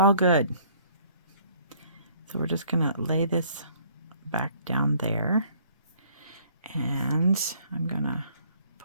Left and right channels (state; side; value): inverted; both; correlation -0.59